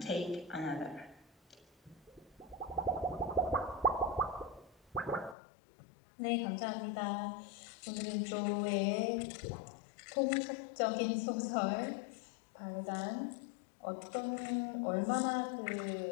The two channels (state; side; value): drops out; right; at 5.4 s